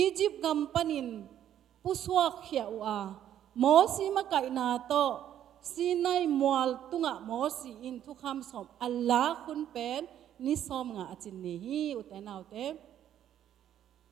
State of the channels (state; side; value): quieter; left; 10.8 dB